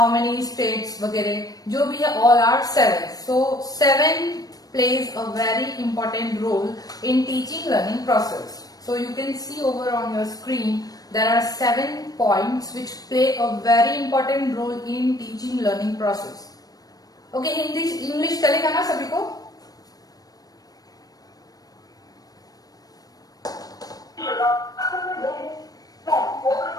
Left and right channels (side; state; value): right; late; 0.18 ms